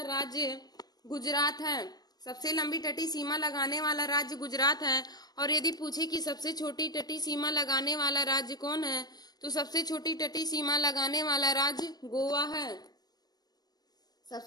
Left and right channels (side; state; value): right; late; 0.19 ms